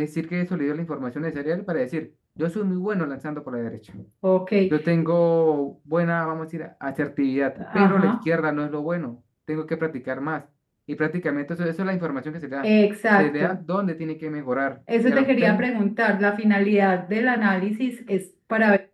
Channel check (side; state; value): both; identical; correlation 1.00